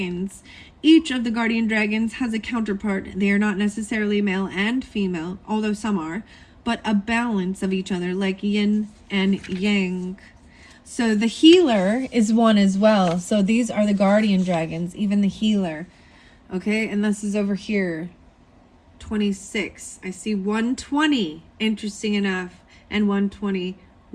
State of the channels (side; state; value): both; identical; correlation 1.00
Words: Each of the guardian dragons has a counterpart. They are not necessarily male and female, although some are, but a balance of each other, like yin and yang. So the healer is one as well. So these are the guardian dragons, even the healer. Okay, and this is over here, 26. I see 120, interesting enough, and